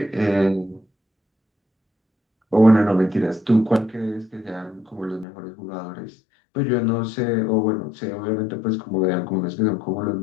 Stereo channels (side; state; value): right; drops out; at 5.2 s